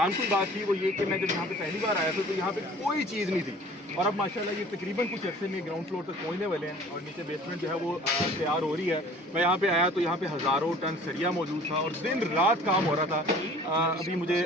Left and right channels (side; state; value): both; normal; correlation 0.48